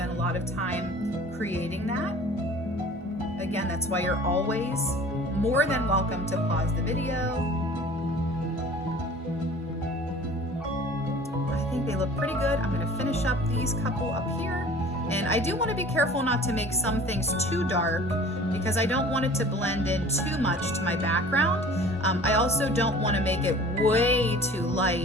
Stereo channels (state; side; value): normal; both; correlation 0.46